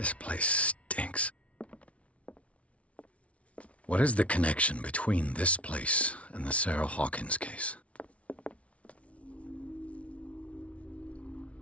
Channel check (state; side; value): late; right; 0.063 ms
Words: place stinks. What is the connection between this place and the Sarah Hawkins case?